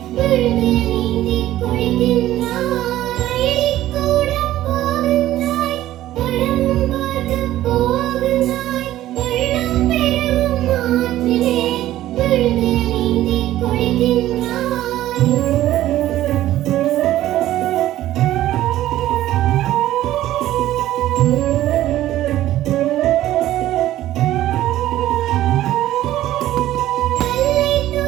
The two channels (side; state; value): left; quieter; 14.1 dB